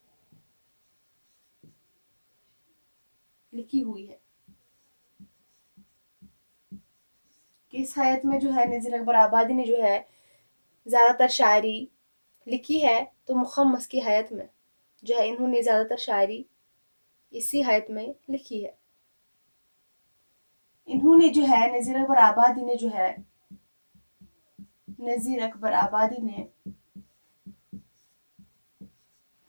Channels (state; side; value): inverted; both; correlation -1.00